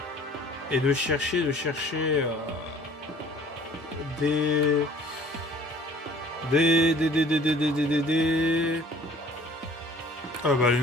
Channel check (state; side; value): normal; both; correlation 0.52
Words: Et de chercher... Des... Ah bah les